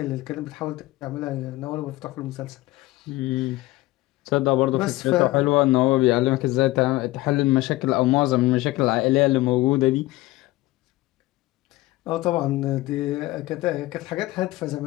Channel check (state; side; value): quieter; right; 18.4 dB